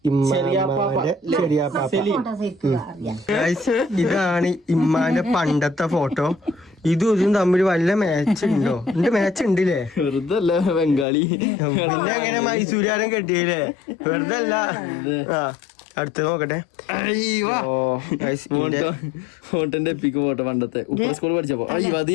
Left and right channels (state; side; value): drops out; right; at 11.1 s